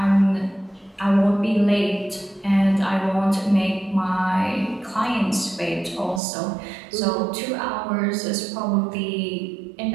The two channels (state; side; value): drops out; left; at 6.2 s